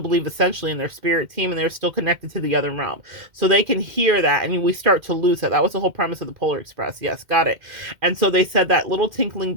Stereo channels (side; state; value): left; late; 2.1 ms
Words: believe essentially in their spirit team, and they're still connected to the other realm. So they can hear that, and we start to lose it. That was the whole premise of the Polar Express. Yes, got it. And so they said that little tinkling